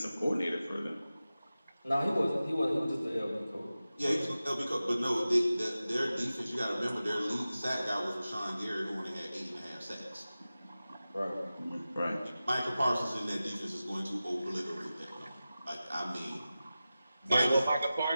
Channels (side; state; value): both; inverted; correlation -0.95